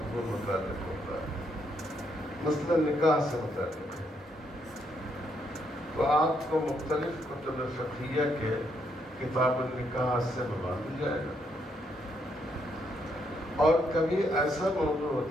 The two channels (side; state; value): both; normal; correlation 0.75